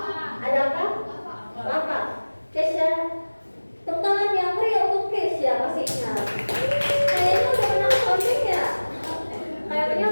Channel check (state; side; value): inverted; both; correlation -1.00